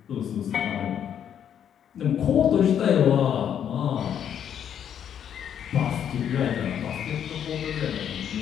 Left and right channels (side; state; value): right; quieter; 9.1 dB